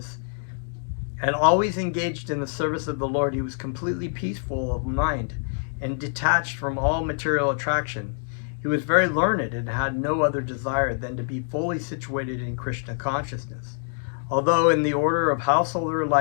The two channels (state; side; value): silent; right; 61 dB below the other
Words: and always engaged in the service of the Lord. He was completely peaceful of mind and detached from all material attraction. He was very learned and had no other desire than to be fully situated in Krishna consciousness. Although in the order of householder